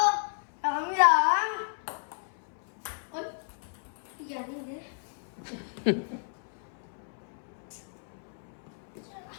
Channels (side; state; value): right; silent; 56 dB below the other